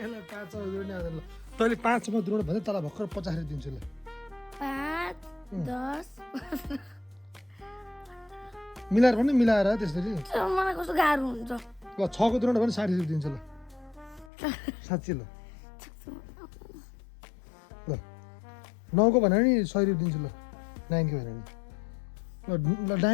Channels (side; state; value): right; drops out; at 14.3 s